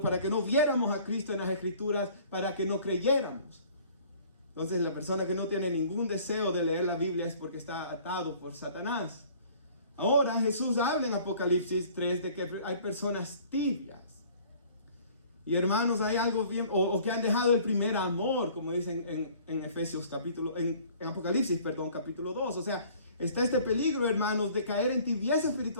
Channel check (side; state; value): both; inverted; correlation -0.53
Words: para que no viéramos a Cristo en las Escrituras, para que no creyéramos. Entonces la persona que no tiene ningún deseo de leer la Biblia es porque está atado por Satanás. Ahora Jesús habla en Apocalipsis 3 de que hay personas tibias. Y hermanos, hay algo bien, o que han dejado el primer amor, como dicen en Apocalipsis, capítulo 2. O sea, está este peligro, hermanos, de caer en tibieza